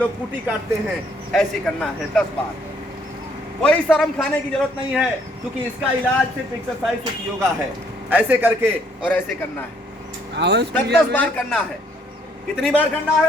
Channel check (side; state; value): both; normal; correlation 0.66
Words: कुटी काटते हैं ऐसे करना है 10 बार। कोई शर्म खाने की जरूरत नहीं है, क्योंकि इसका इलाज सिर्फ एक्सरसाइज, सिर्फ योगा है। ऐसे करके और ऐसे करना है, 10 बार करना है। कितनी बार करना